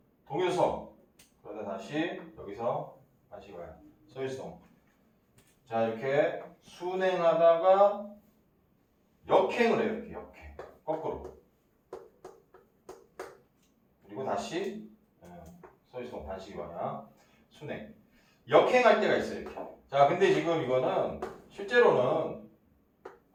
동일성. 그러다 다시 여기서 반시계 방향 서이송. 자 이렇게 순행하다가 역행을 해요. 이렇게 역행 거꾸로. 그리고 다시 서이송 반시계 방향 순행. 역행할 때가 있어요. 이렇게. 자, 근데 지금 이거는 실제로는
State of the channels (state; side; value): identical; both; correlation 1.00